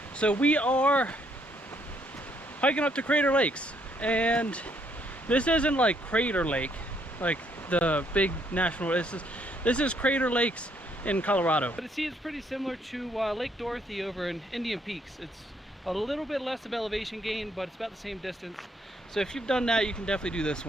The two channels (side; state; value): both; normal; correlation 0.70